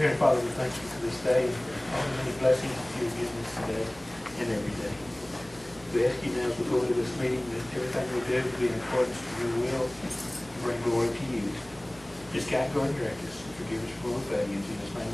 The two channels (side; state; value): right; noise; hum, 24 dB below the sound